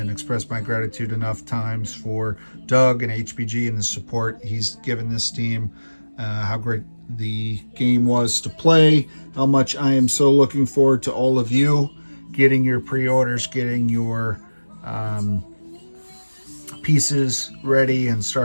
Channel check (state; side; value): inverted; both; correlation -1.00